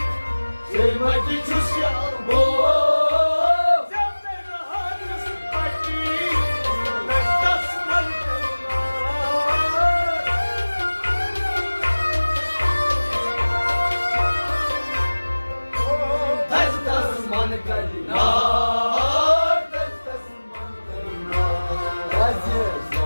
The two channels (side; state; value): both; inverted; correlation -1.00